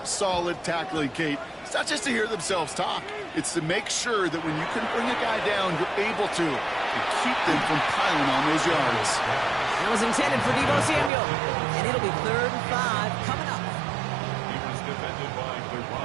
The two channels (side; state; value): left; drops out; at 11.1 s